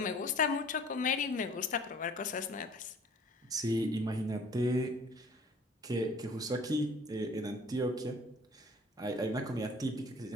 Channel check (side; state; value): both; normal; correlation 0.51